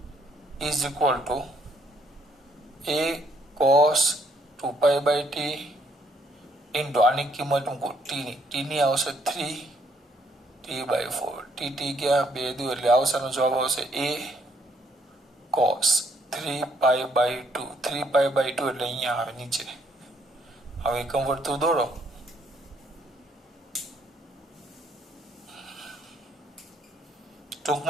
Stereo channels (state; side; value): normal; both; correlation 0.68